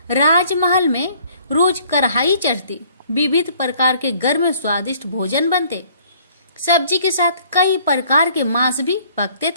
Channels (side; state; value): both; inverted; correlation -0.58